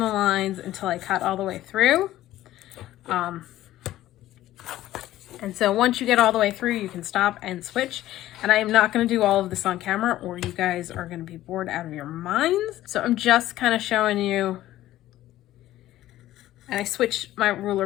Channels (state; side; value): quieter; right; 14.5 dB